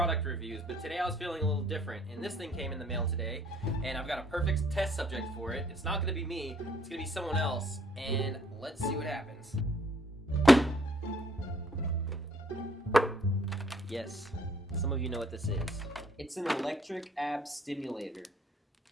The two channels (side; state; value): both; normal; correlation 0.63